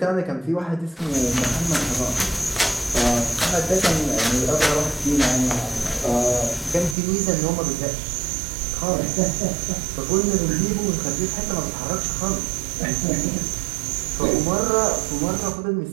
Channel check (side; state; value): left; drops out; at 7.0 s